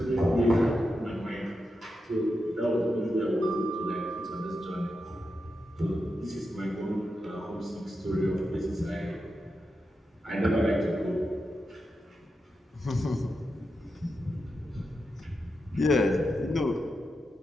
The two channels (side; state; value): both; normal; correlation 0.88